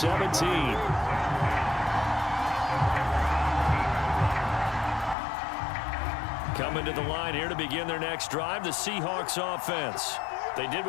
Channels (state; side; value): drops out; right; at 5.2 s